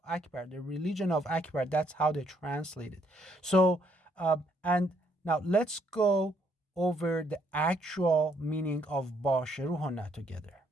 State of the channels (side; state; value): both; normal; correlation 0.70